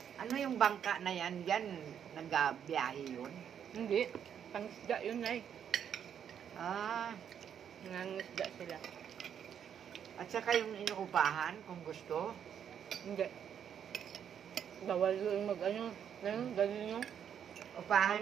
Ano yung bangka na yan? Yan, nag-biyahe yun? Hindi. Pangisda yun na eh. Ah, Nangangisda sila. at saka yung inuupahan kung gusto. Hindi. Bawal yung mag-ano. Ganun yung Upahan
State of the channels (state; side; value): quieter; left; 8.6 dB